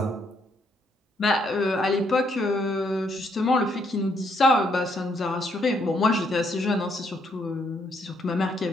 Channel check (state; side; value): normal; both; correlation 0.72